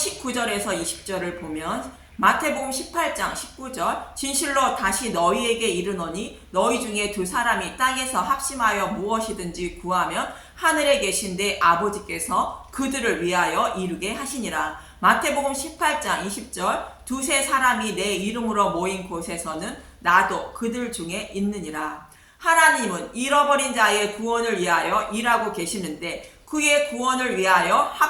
20절을 보면 마태복음 18장 19절 진실로 다시 너희에게 이르노니 너희 중에 두 사람이 땅에서 합심하여 무엇이든지 구하면 하늘에 계신데 아버지께서 그들을 위하여 이루게 하시니라. 마태복음 18장 20절 두세 사람이 내 이름으로 모인 곳에서는 나도 그들 중에 있느니라. 하나님은 잃어버린 자의 구원을 위하여 일하고 계시는데 그의 구원을 위하여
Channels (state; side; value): identical; both; correlation 1.00